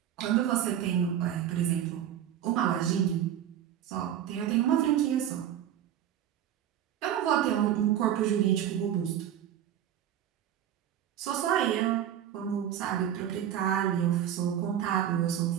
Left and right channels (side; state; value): left; quieter; 10.5 dB